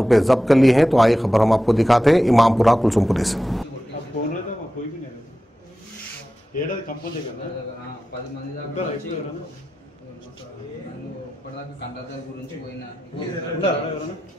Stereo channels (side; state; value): both; normal; correlation 0.93